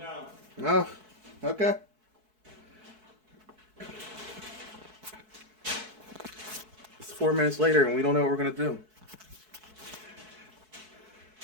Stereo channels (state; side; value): late; left; 4.6 ms